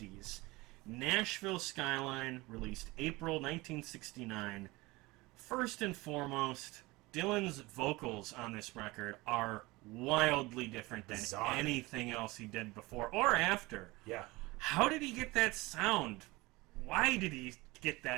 Nashville Skyline, released April 1969. First and foremost, Dylan's vocals on this record are wildly different than Bizarre. anything else he did before or after. Yeah. How did he get that sound? Why did he get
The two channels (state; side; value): quieter; left; 21.9 dB